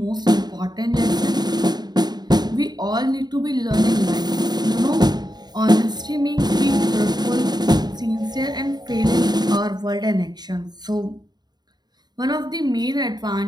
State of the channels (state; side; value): late; left; 0.20 ms